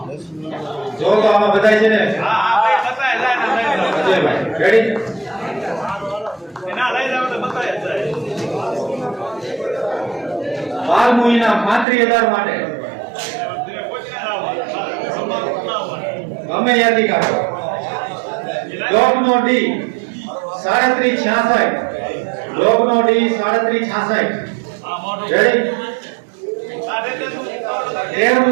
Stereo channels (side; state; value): left; drops out; at 11.9 s